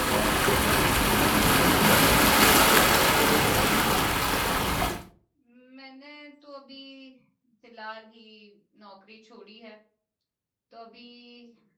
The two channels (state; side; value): identical; both; correlation 1.00